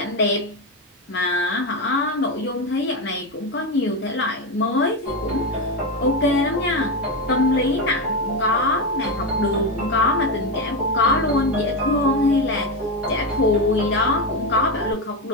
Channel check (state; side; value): normal; both; correlation 0.13